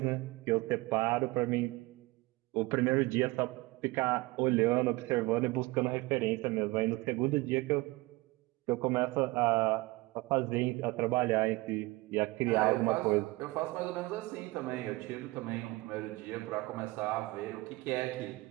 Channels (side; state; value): left; quieter; 21.9 dB